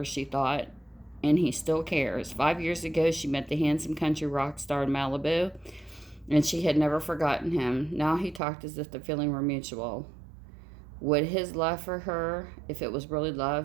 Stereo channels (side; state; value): left; drops out; at 8.4 s